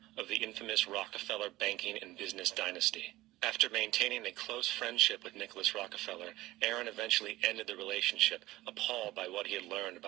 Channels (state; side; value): quieter; left; 17.6 dB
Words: of the infamous Rockefeller banking and business dynasty. After maintaining a close friendship with Nwo Rockefeller, Aaron eventually ended the relationship, appalled by what he had learned